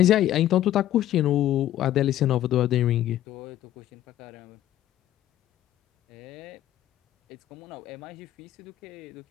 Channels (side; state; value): right; quieter; 12.8 dB